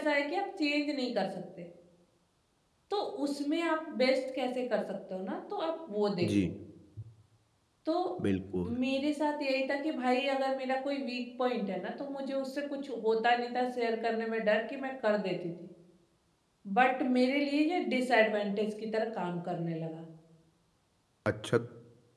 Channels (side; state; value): both; identical; correlation 1.00